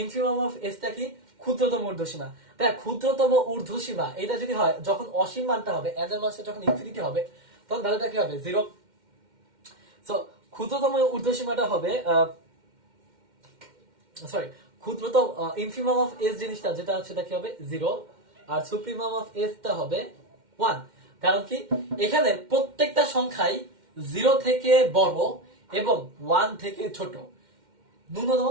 ইনফিমাম অফ এসটা কি? ক্ষুদ্রতম ঊর্ধ্বসীমা। তাই ক্ষুদ্রতম ঊর্ধ্বসীমা এটা যদি হয়, যখন অসীম মানটা হবে, এন এর মানটা যখন ইনফিনিটি হবে, তখন ভ্যালুটা কি হবে? 0। সো ক্ষুদ্রতম ঊর্ধ্বসীমাটা হবে সরি, ক্ষুদ্রতম ইনফিমাম অফ এস জিনিসটা যেটা আছে সেটা কি হবে? 0। আর সুপ্রিমাম অফ এস টা হবে 1। কারণ কি, এখানে প্রত্যেকটা সংখ্যাই 0 থেকে বড় এবং 1 থেকে ছোট, ন্যূনতম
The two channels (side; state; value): left; late; 2.1 ms